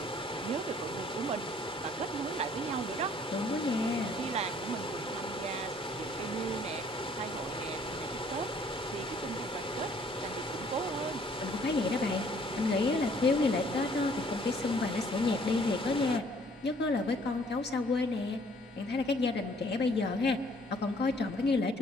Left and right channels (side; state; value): both; normal; correlation 0.60